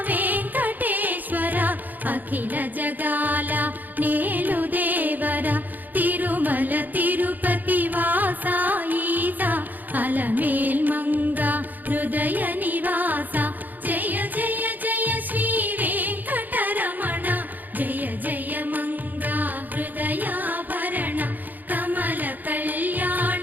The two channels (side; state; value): left; late; 0.084 ms